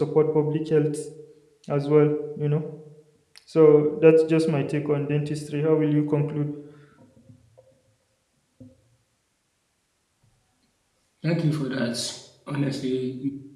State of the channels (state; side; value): identical; both; correlation 1.00